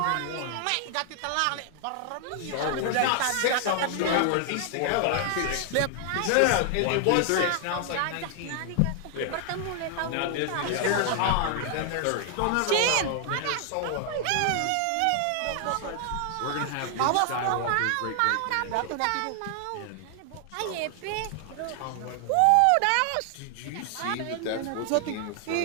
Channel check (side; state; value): both; different; correlation 0.00